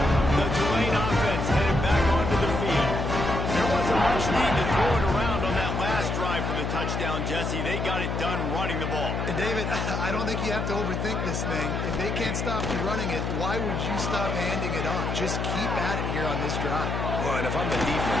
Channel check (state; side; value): noise; left; hum, 2 dB below the sound